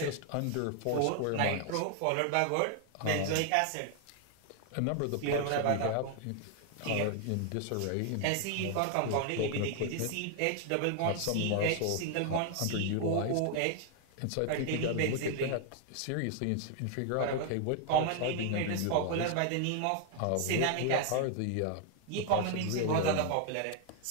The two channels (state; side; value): different; both; correlation 0.00